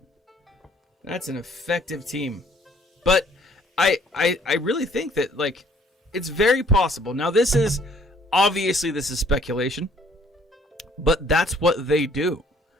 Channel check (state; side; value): normal; both; correlation 0.60